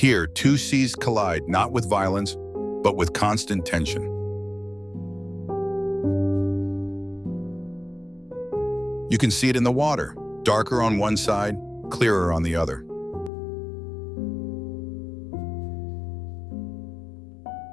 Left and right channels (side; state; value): right; drops out; at 13.3 s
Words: Here, two seas collide not with violence, but with constant tension. You can see it in the water, darker on one side, clearer on the other.